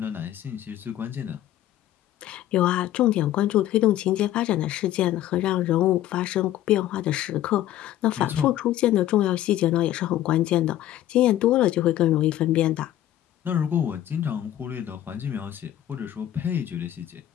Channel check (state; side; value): quieter; right; 12.9 dB